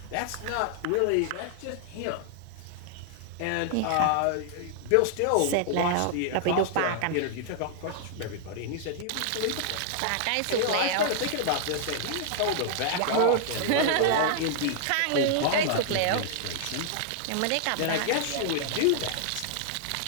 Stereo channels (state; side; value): different; both; correlation -0.01